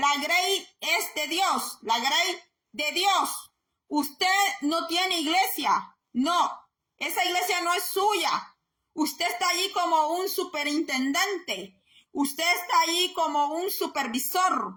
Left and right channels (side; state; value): both; identical; correlation 1.00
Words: grey es de Dios, la grey de Dios. Usted no tiene iglesia, no, esa iglesia no es suya. Usted está allí como un superintendente, usted está allí como un